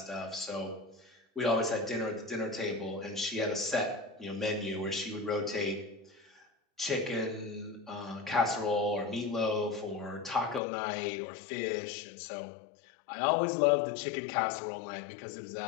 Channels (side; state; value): right; drops out; at 10.6 s